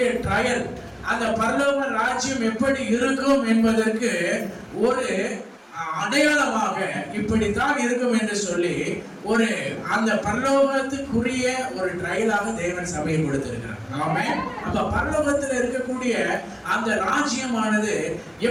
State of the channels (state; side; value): identical; both; correlation 1.00